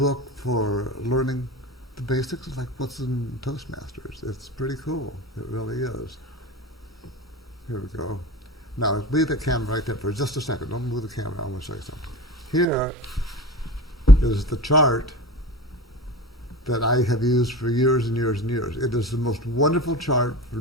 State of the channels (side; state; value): both; normal; correlation 0.32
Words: for learning the basics of like what's in Toastmasters. It's pretty cool. It really is. Here we go. Now, leave the camera right there for just a second. Don't move the camera. I want to show you something. Here is the chart that I have used for years and years and years. It is the most wonderful chart for